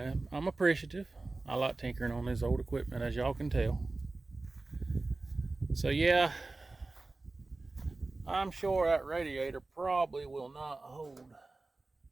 I'm appreciative. I like tinkering on this old equipment, as y'all can tell. So yeah, I'm sure that radiator probably will not hold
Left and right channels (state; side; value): quieter; left; 3.3 dB